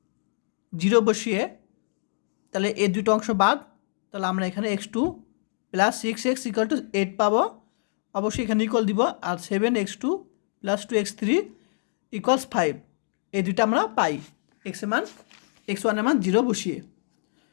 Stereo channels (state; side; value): silent; right; digital silence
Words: 0 বসিয়ে তাহলে এই দুটো অংশ বাদ, তাহলে আমরা এখানে x2 + 6x = 8 পাবো। অবশ্যই এখানে ইকুয়াল দিব, আর 7x2 + 2x3 = 5, এই দুটো আমরা পাই x1 এর মান 0 বসিয়ে।